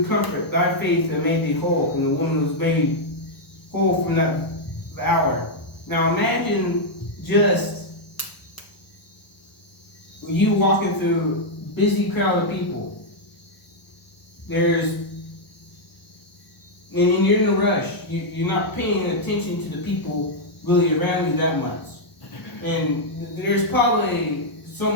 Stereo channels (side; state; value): right; late; 1.0 ms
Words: comfort, thy faith hath made thee whole. And the woman was made whole from that hour. Now imagine just you walking through a busy crowd of people. And you're in a rush. You're not paying attention to the people really around you that much. And there's probably so